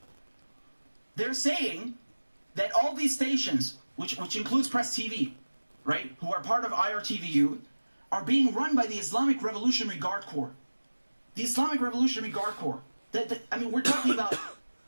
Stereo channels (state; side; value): inverted; both; correlation -1.00